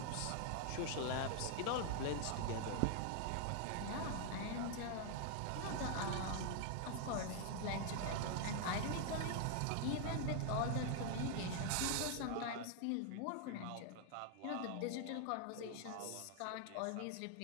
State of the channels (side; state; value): both; different; correlation 0.00